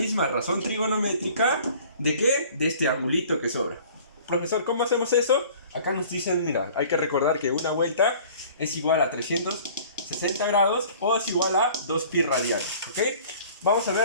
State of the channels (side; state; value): both; inverted; correlation -0.49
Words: razón trigonométrica ¿de qué? De este angulito que sobra. Profesor, ¿cómo hacemos eso? Acá nos dicen, mira, hay que recordar que una vuelta es igual a 360 grados o es igual a 2pi radianes, ¿ok? Vamos a